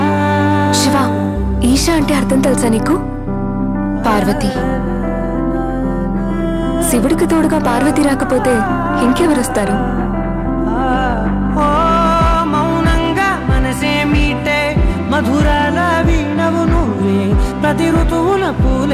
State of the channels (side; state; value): both; identical; correlation 1.00